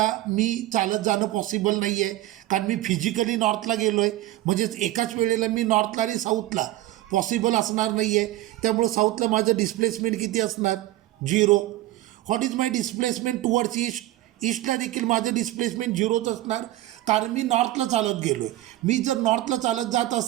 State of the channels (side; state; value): left; quieter; 16.0 dB